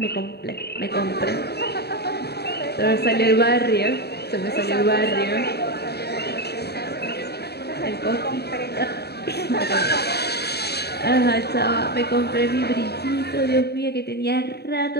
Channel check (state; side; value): late; right; 0.47 ms